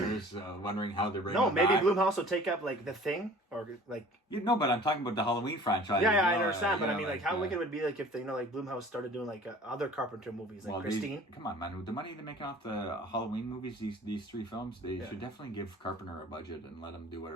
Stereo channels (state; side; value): normal; both; correlation 0.47